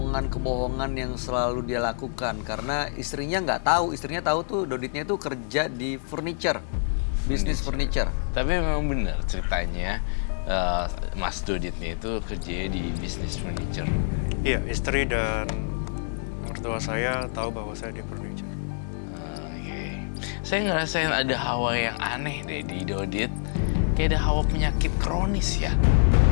yang selalu dia lakukan, karena istrinya nggak tahu. Istrinya tahu tuh Doditnya tuh kerja di bisnis furniture. Tapi memang benar ceritanya, Mas Doditnya itu kerjanya di bisnis furniture. Iya, istri dan mertua saya tahu bahwa saya di furniture. Saya ngerasain ada hawa yang aneh deh di Dodit. Kayak ada hawa penyakit kronis ya.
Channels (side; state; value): right; silent; digital silence